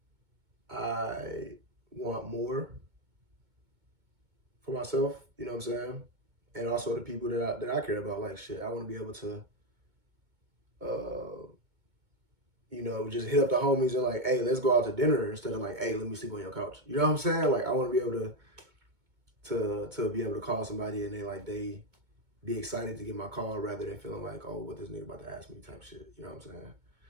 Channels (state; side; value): late; left; 2.2 ms